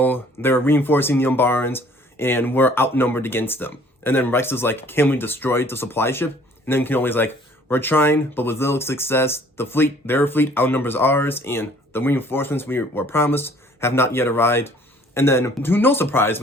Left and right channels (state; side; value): normal; both; correlation 0.56